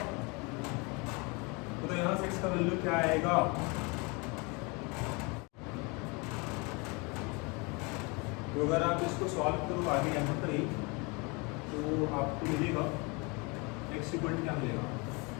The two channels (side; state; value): right; quieter; 29.1 dB